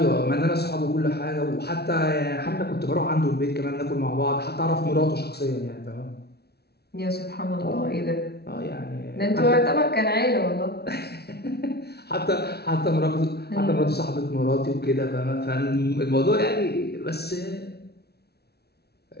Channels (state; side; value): late; right; 0.47 ms